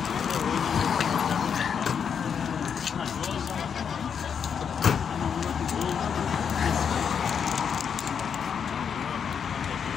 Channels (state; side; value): quieter; right; 7.2 dB